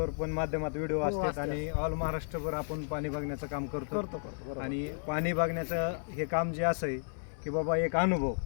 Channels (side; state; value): right; silent; 56 dB below the other